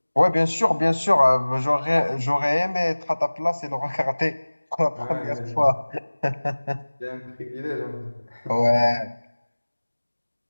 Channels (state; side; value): inverted; both; correlation -1.00